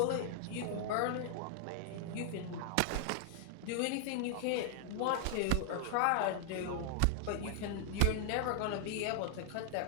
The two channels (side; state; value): both; different; correlation 0.00